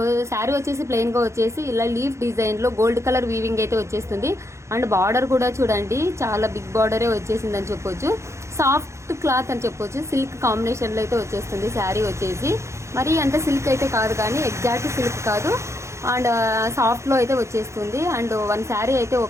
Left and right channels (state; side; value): late; left; 0.14 ms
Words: శారీ వచ్చేసి ప్లెయిన్గా వచ్చేసి ఇలా లీఫ్ డిజైన్లో గోల్డ్ కలర్ వీవింగ్ అయితే వచ్చేస్తుంది. అండ్ బార్డర్ కూడా చూడండి, చాలా బిగ్ బార్డరే వచ్చేసిందని చెప్పొచ్చు. సాఫ్ట్ క్లాత్ అని చెప్పొచ్చు, సిల్క్ కాంబినేషన్లో అయితే వచ్చేస్తుంది శారీ వచ్చేసి. మరి అంత సిల్క్ అయితే కాదు, కానీ ఎగ్జాక్ట్ సిల్క్ కాదు, అండ్ సాఫ్ట్లో అయితే వచ్చేస్తుంది. అండ్ వన్ శారీ అయితే